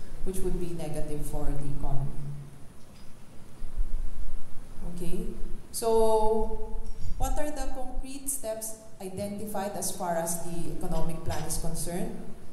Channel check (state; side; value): identical; both; correlation 1.00